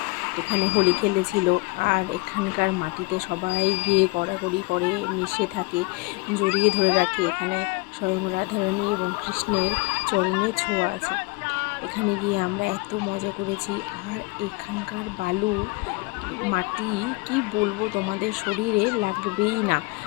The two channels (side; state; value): right; quieter; 25.3 dB